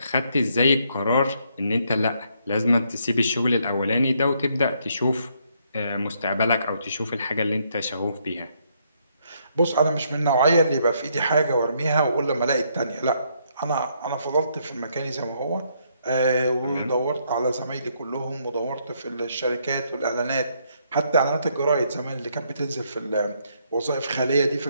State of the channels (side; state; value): both; inverted; correlation -0.72